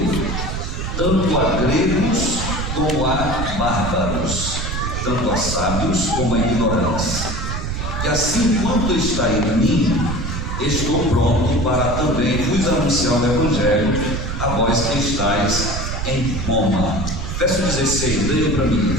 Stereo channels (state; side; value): noise; right; rumble, 3 dB below the sound